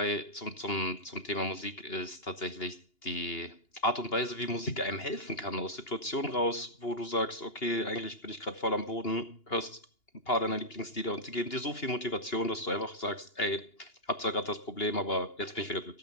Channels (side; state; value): right; late; 2.8 ms